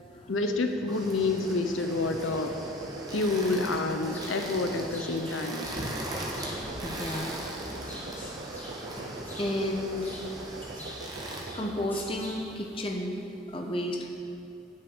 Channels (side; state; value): both; normal; correlation 0.41